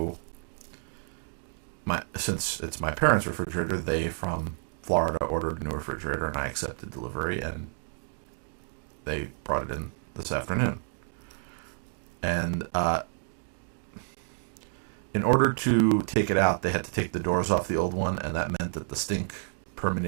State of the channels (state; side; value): silent; left; digital silence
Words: since it's my parents' refrigerator, they from Florida ordered a new refrigerator, and I accepted delivery, and they brought it in this afternoon. And in order to take it out, they had to take the doors off the old one, and that meant that the stink